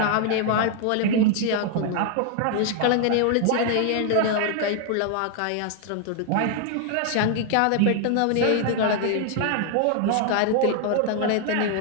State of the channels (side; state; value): both; different; correlation 0.00